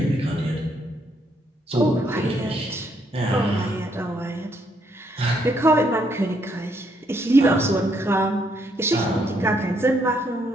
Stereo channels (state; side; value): normal; both; correlation 0.72